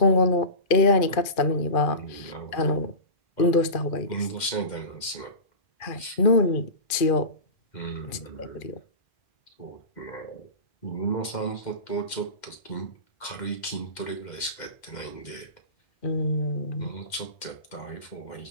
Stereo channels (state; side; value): late; right; 2.4 ms